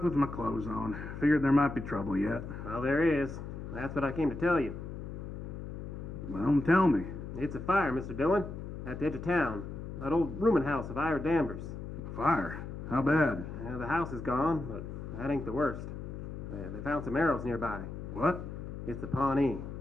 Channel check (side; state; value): left; noise; hum, 8 dB below the sound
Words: with my clothes on. Figured there might be trouble yet. Well, there is. That's what I came to tell you. Well, tell me. It's a fire, Mr. Dillon, at the edge of town. That old rooming house of Ira Danvers. Fire? How bad? Yeah, the house is gone, but that ain't the worst. They found some arrows nearby. What? It's the Pawnee.